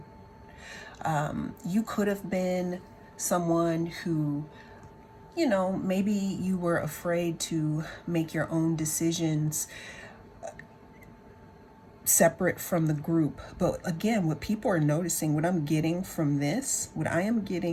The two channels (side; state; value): both; identical; correlation 1.00